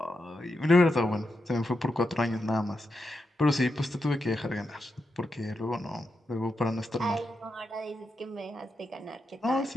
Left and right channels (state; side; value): normal; both; correlation 0.86